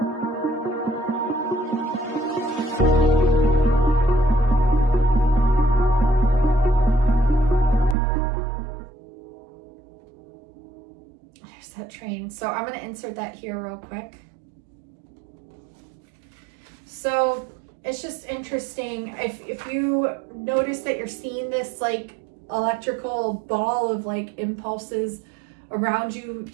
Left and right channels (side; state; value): left; drops out; at 8.0 s